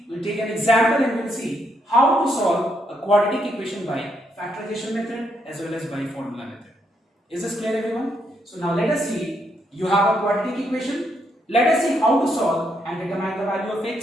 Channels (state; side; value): normal; both; correlation 0.76